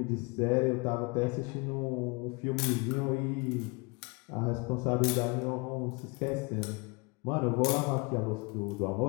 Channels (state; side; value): quieter; right; 29.0 dB